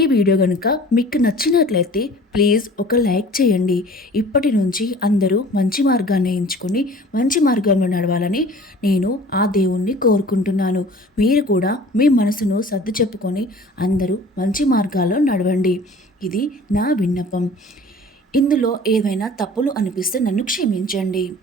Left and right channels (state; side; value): normal; both; correlation 0.46